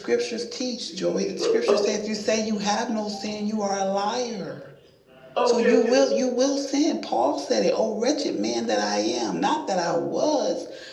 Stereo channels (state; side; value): identical; both; correlation 1.00